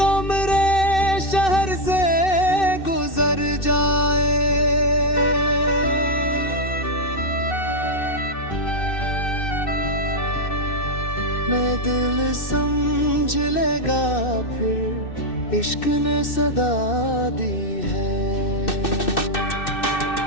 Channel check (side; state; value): right; late; 2.6 ms